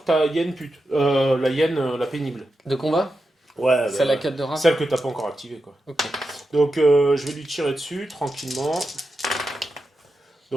ta hyène pute. La hyène, la pénible. De combat Ouais, C'est la 4 de rap. celle que t'as pas encore activée, quoi. Ok. Donc, je vais lui tirer dessus, tranquillement.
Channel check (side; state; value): both; normal; correlation 0.89